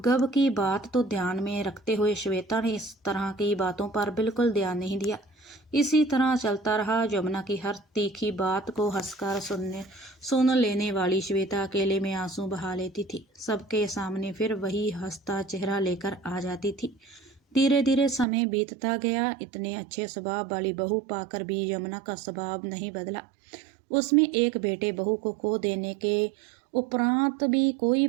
की बात तो ध्यान में रखते हुए श्वेता ने इस तरह की बातों पर बिल्कुल ध्यान नहीं दिया। इसी तरह चलता रहा। यमुना की हर तीखी बात को हंसकर सुन लेने वाली श्वेता अकेले में आंसू बहा लेती थी। सबके सामने फिर वही हंसता चेहरा लेकर आ जाती थी। धीरे धीरे समय बीतता गया। इतने अच्छे स्वभाव वाली बहू पाकर भी यमुना का स्वभाव नहीं बदला। उसमें एक बेटे बहू को खो देने के उपरांत भी कोई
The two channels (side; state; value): left; drops out; at 18.2 s